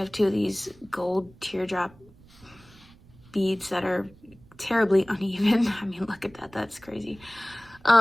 two of these gold teardrop beads that are terribly uneven. I mean, look at that, that's crazy.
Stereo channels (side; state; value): right; noise; rumble, 26 dB below the sound